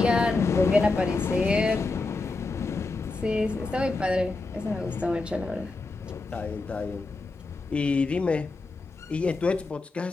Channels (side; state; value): right; quieter; 3.5 dB